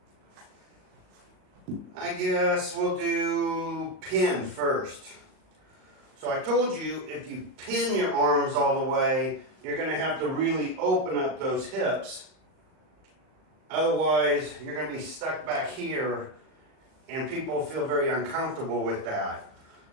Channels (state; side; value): late; left; 38 ms